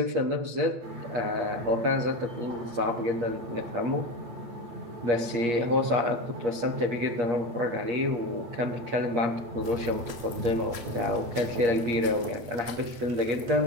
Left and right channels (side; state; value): left; late; 8.5 ms